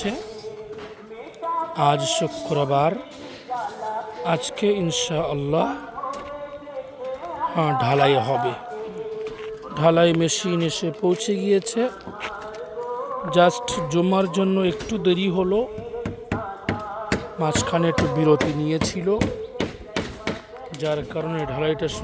আজ শুক্রবার, আজকে ইনশাআল্লাহ ঢালাই হবে। ঢালাই মেশিন এসে পৌঁছে গিয়েছে। জাস্ট জমার জন্য একটু দেরি হলো, মাঝখানে একটু বিরতি নিয়েছিল, যার কারণে ঢালাইটা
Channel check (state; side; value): identical; both; correlation 1.00